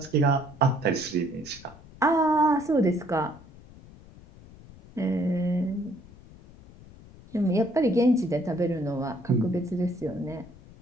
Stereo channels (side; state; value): left; noise; rumble, 21 dB below the sound